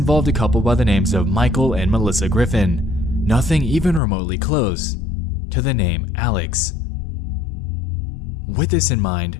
a couple by the names of Michael and Melissa Griffin, nothing even remotely close to the name Alex. With this in mind,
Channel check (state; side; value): drops out; right; at 4.0 s